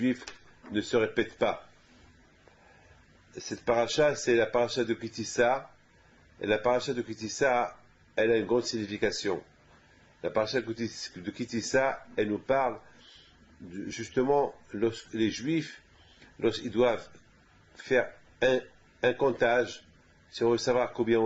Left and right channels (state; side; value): identical; both; correlation 1.00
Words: ne se répète pas. Cette paracha, c'est la paracha de Kitissa, et la paracha de Kitissa, elle a une grande signification. La paracha de Kitissa, elle nous parle justement les Juifs, lorsqu'ils doivent faire un comptage, si on veut savoir combien